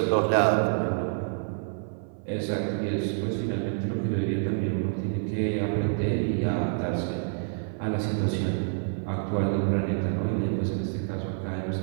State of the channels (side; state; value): left; silent; 57 dB below the other